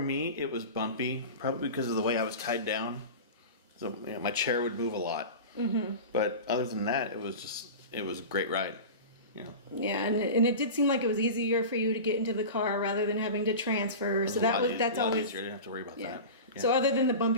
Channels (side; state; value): both; inverted; correlation -0.30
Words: it was bumpy, probably because of the way I was tied down. So my chair would move a lot. Mm-hmm. But other than that, it was a great ride. Yeah, and it did seem like it was easier for you to get into the car rather than having to transfer. So that's always easier. You didn't have to worry about that. Yeah. So other than the